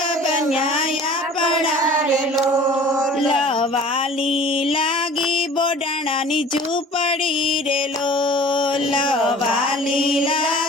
बन्याया पड़ा रे लोल, वाली लागी बोडाणानी झूपड़ी रे लोल, वाली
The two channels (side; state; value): both; normal; correlation 0.46